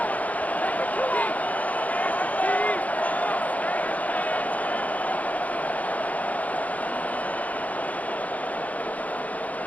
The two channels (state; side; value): late; right; 0.073 ms